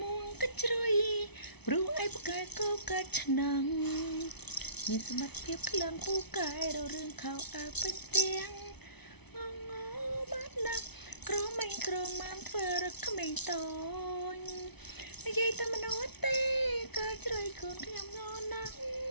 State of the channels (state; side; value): late; right; 0.99 ms